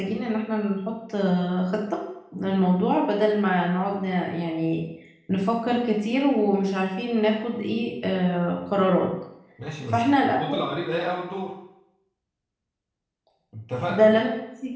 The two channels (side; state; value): both; identical; correlation 1.00